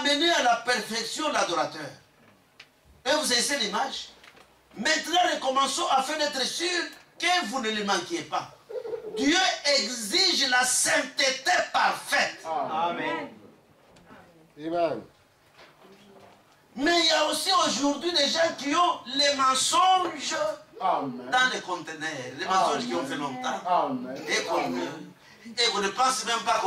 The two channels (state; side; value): identical; both; correlation 1.00